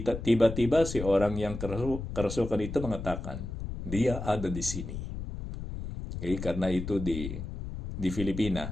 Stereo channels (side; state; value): left; noise; rumble, 7 dB below the sound